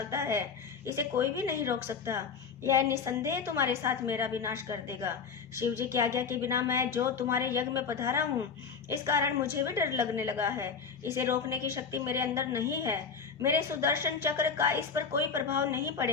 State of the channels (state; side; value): quieter; right; 5.8 dB